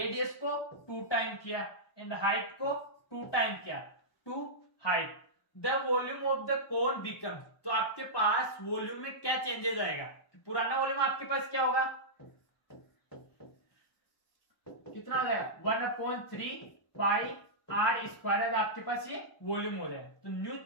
को 2 टाइम किया एंड हाइट को 2 टाइम किया, 2 height, the volume of the cone become. तो आपके पास वॉल्यूम में क्या चेंजेस आएगा, पुराना वॉल्यूम आपके पास क्या होगा कितना हो जाएगा 1/3 पाई आर स्क्वायर, आपके पास ये वॉल्यूम हो जाएगा। तो न्यू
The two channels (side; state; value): right; late; 1.2 ms